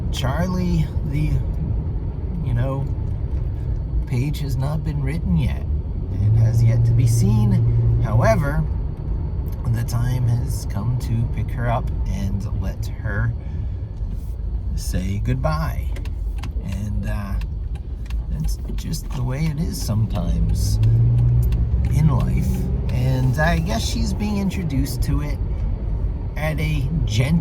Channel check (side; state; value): both; identical; correlation 1.00